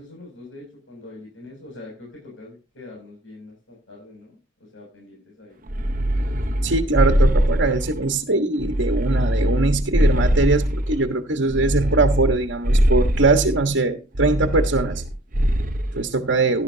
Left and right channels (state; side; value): normal; both; correlation 0.51